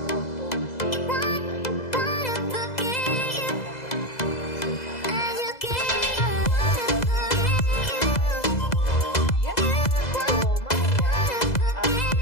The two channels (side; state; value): right; late; 2.0 ms